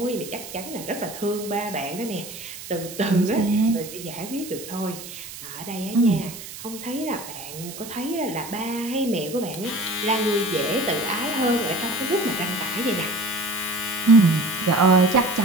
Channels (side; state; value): right; noise; hiss, 12 dB below the sound